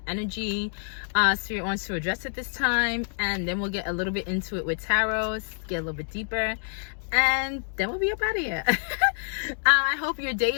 energy Spirit wants to address at this time, and then we'll get a little bit into it with tarot, get a little bit deeper, and then we'll be up out of here. I hope your day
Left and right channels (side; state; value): right; silent; digital silence